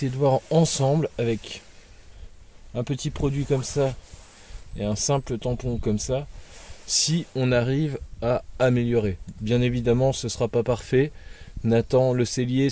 de voir ensemble avec un petit produit comme ça et un simple tampon comme ça, si on arrive à améliorer. Bien évidemment ce sera pas parfait. Nathan le cellier,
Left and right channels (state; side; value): identical; both; correlation 1.00